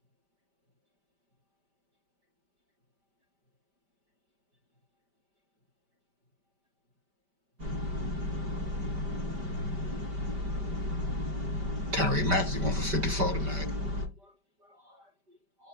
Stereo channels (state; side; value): late; left; 5.1 ms